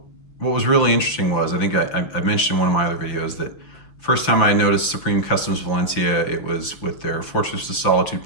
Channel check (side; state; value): right; late; 6.0 ms